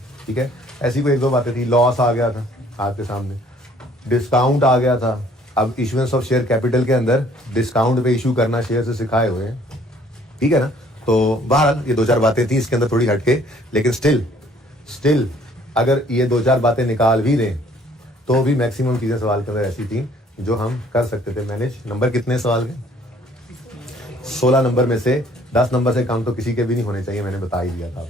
ठीक है, ऐसी कोई 1-2 बातें थी। लॉस आ गया था आपके सामने, डिस्काउंट आ गया था। अब इशुएंस ऑफ शेयर कैपिटल के अंदर डिस्काउंट पे इशू करना शेयर से सिखाए हुए हैं। ठीक है ना, तो बहरहाल ये 2-4 बातें थी इसके अंदर थोड़ी हटके, लेकिन स्टिल अगर ये 2-4 बातें निकाल भी दें तो भी मैक्सिमम चीज़ें सवाल के अंदर ऐसी थी जो हम कर सकते थे मैनेज। नंबर कितने सवाल के? 16 नंबर में से 10 नंबर से कम तो किसी के भी नहीं होने चाहिए, मैंने बता ही दिया था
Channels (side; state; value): both; normal; correlation 0.59